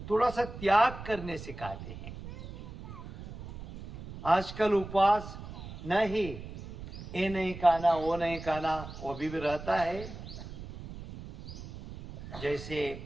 थोड़ा सा त्याग करने सिखाते हैं। आजकल उपवास नहीं, ये नहीं खाना, वो नहीं खाना, वो भी रहता है।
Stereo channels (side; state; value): right; noise; rumble, 12 dB below the sound